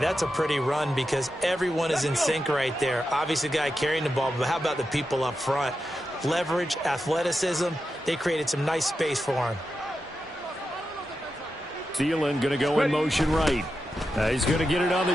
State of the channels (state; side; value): normal; both; correlation 0.89